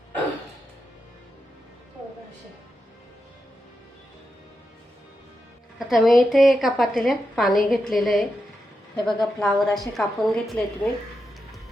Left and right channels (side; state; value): both; normal; correlation 0.87